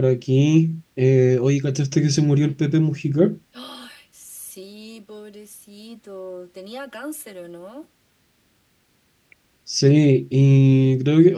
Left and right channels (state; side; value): identical; both; correlation 1.00